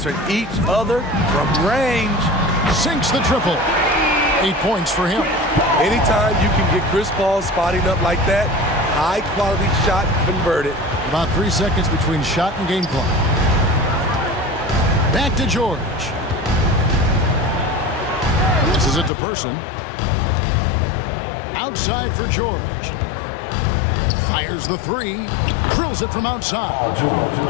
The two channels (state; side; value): drops out; right; at 19.1 s